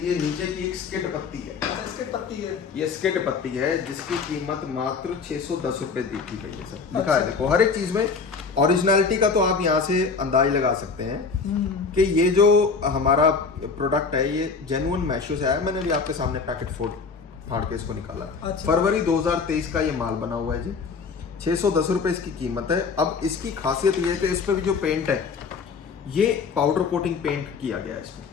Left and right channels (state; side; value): quieter; right; 5.0 dB